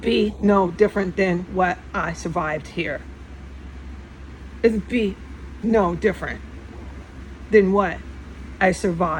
no different than what I survived here. It would be no different than what I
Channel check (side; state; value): both; identical; correlation 1.00